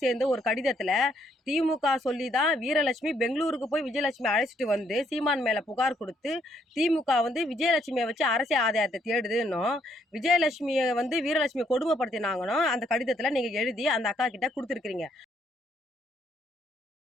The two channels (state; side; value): normal; both; correlation 0.71